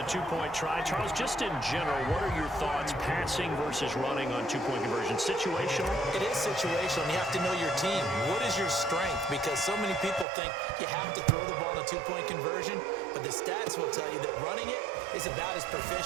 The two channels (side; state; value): left; drops out; at 10.2 s